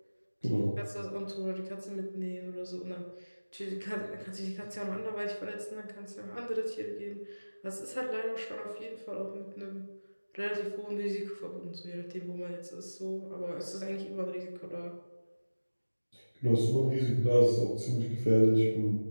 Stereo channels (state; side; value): inverted; both; correlation -1.00